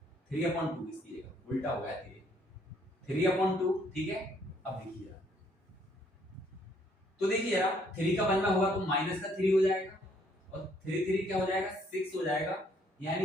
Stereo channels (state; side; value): normal; both; correlation 0.66